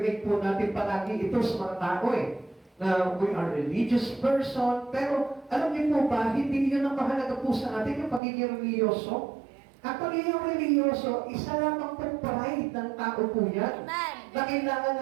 po natin palagi ito sa mga tao na we are religious person, pero alam niyo po ba, hindi yun ang mahalaga po sa atin yung pagiging religyoso. Actually, yung religyoso, isa lamang pong pride ng tao po yan. Amen. Na kailangan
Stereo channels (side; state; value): left; drops out; at 8.2 s